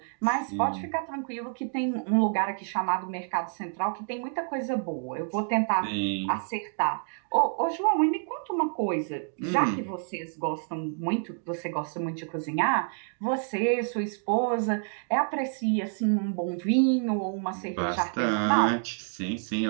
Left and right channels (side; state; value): left; silent; 59 dB below the other